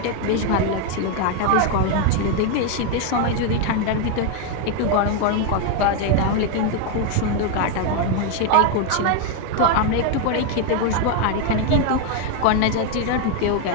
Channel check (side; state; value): both; different; correlation 0.01